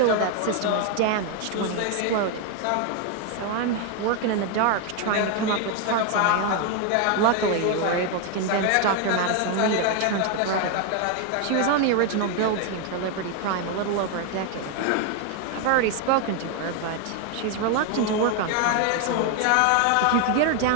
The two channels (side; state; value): both; different; correlation 0.01